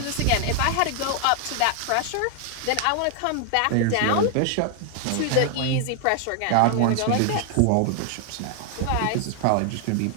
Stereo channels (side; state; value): both; different; correlation 0.00